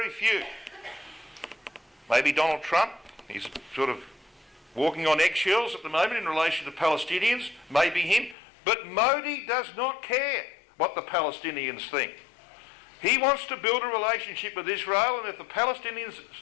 few. Maybe Donald Trump. He's sort of walking on eggshells at the moment in relation to Palestinians. Maybe him. But Modi does not care what the Palestinians think. He wants to build a relationship with Israel, and if the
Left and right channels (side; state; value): right; drops out; at 8.3 s